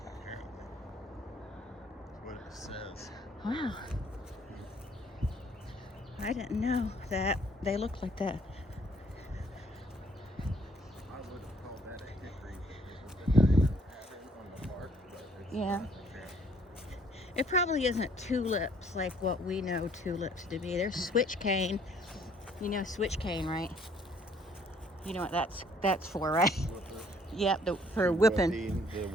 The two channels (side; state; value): both; normal; correlation 0.62